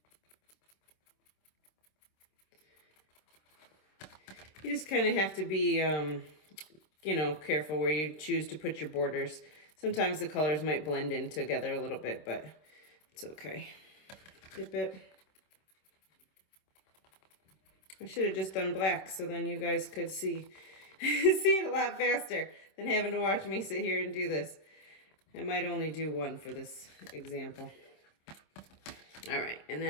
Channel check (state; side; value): late; right; 26 ms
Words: You just kind of have to be, careful where you choose to put your borders. Sometimes the colors might blend in together a little bit, but it's okay. Dip it. I should have just done black so then you guys could see it a lot faster than having to watch me sit here and do this. I might only do one for this example. All right, and